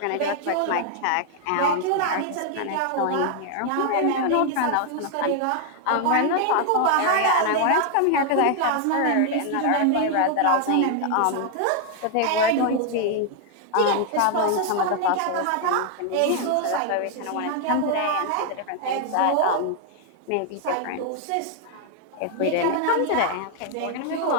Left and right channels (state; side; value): different; both; correlation 0.00